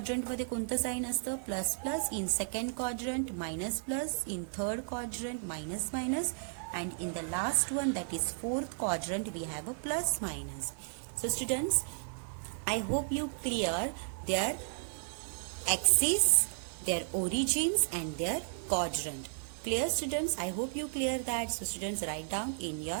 मध्ये कोणतं साइन असतं, plus plus. In second quadrant minus plus. In third quadrant minus minus. and in the last one, that is fourth quadrant, we have a plus minus. So students, I hope you clear their axis, their origins and their quadrant. Clear students? I hope you clear that. So students, write down in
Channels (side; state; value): left; silent; digital silence